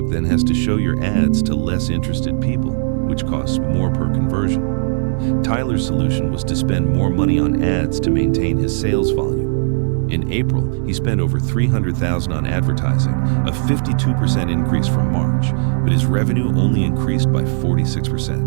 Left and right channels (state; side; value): silent; left; 68 dB below the other